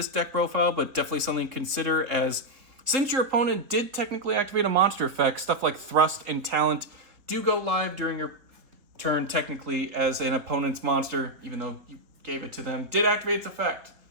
deck profile, but definitely something to consider, as since your opponent did technically activate a monster effect, stuff like Thrust and Talent do go live during your turn technically as an opponent's monster, even though you gave it to them, did activate its effect.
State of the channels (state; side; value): late; left; 3.9 ms